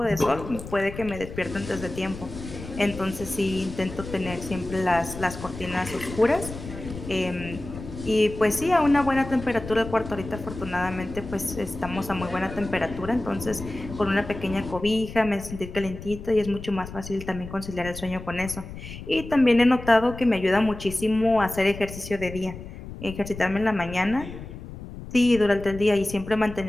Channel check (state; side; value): noise; left; rumble, 12 dB below the sound